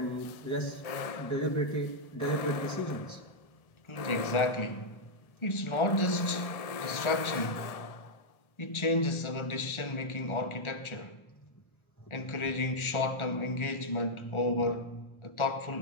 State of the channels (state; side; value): late; right; 1.4 ms